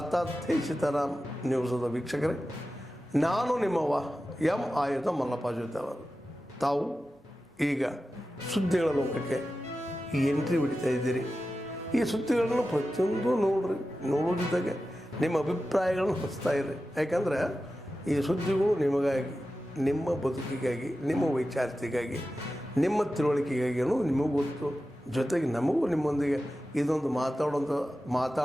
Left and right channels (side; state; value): both; normal; correlation 0.93